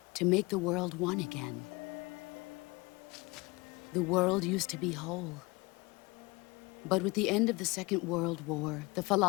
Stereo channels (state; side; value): quieter; right; 24.6 dB